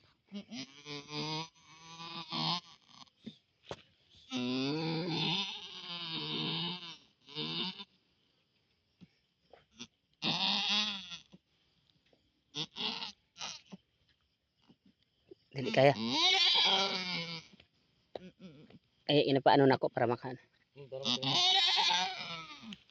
Dili kaya. Ay, inapaano na ako para makan.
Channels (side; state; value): both; identical; correlation 1.00